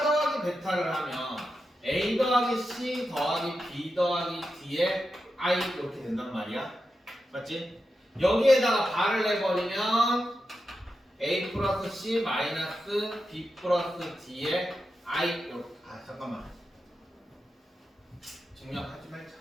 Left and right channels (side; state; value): both; normal; correlation 0.89